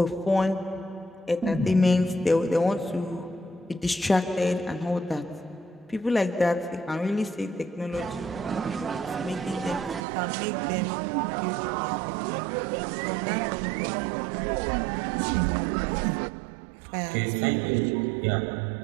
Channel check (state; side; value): drops out; left; at 10.0 s